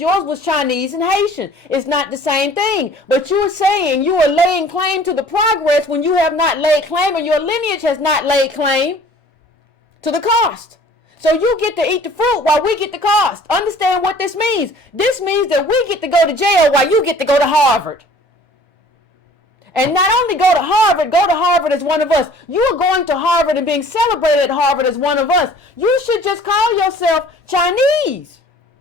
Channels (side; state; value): both; normal; correlation 0.51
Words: was Chinese and Haitian. It's not the same thing. But you are saying you are laying claim to the progress when you have not laid claim, and your lineage has not laid claim to the cost. So you get to eat the fruit while we get the cost. Understand what this means. This means that we get to go to jail while you get to go to Harvard. And not only go to Harvard as one of us. You are going to Harvard and being celebrated at Harvard as one of us. You should just call yourself Chinese.